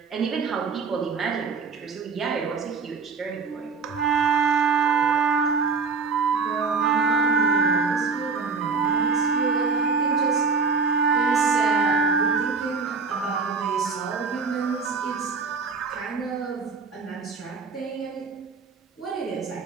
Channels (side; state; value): left; quieter; 4.9 dB